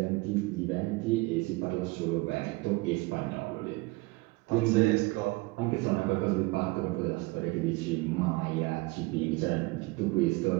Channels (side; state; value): left; quieter; 23.6 dB